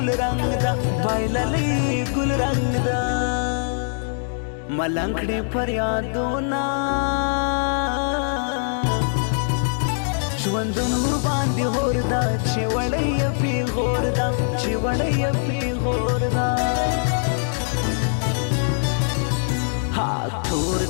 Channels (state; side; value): silent; right; digital silence